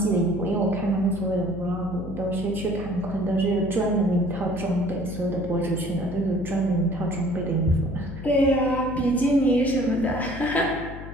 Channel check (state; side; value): noise; left; hum, 11 dB below the sound